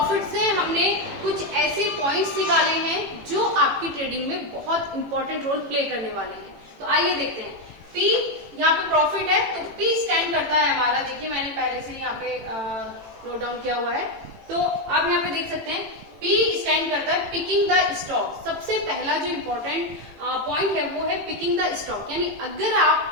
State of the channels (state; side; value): late; left; 18 ms